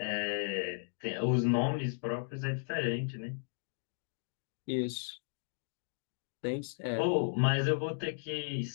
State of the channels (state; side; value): silent; right; digital silence